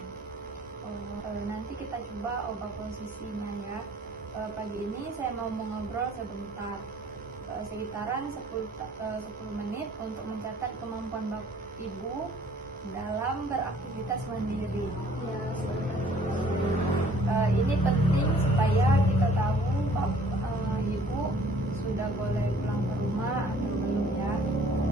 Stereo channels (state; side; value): normal; both; correlation 0.56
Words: Nanti kita coba ubah posisinya ya. Pagi ini saya mau mengobrol sebentar, sekitaran 10 menit untuk mencatat kemampuan Ibu dalam beraktivitas mandiri. Ya, Ini penting supaya kita tahu Ibu sudah boleh pulang ke rumah atau belum ya.